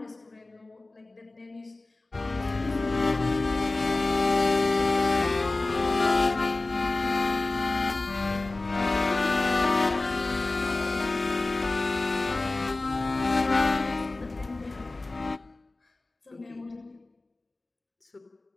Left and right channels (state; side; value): quieter; right; 3.1 dB